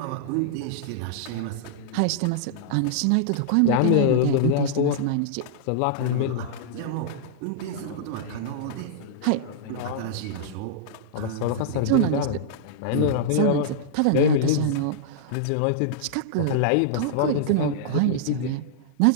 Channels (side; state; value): both; different; correlation -0.02